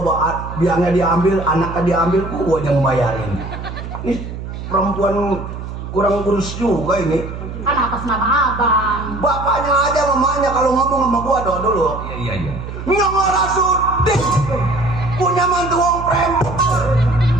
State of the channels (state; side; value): noise; right; hum, 9 dB below the sound